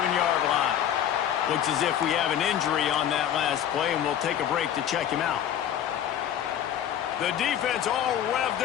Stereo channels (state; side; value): quieter; right; 10.2 dB